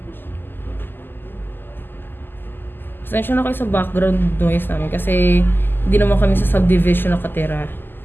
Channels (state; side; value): late; right; 0.095 ms